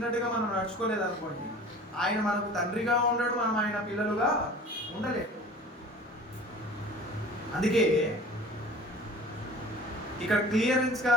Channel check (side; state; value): both; normal; correlation 0.42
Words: మనం నడుచుకోలేదు అనుకోండి, ఆయన మనకు తండ్రిగా ఉండడు, మనం ఆయన పిల్లలుగా ఉండలేదు. అందుకే ఇక్కడ క్లియరెన్స్గా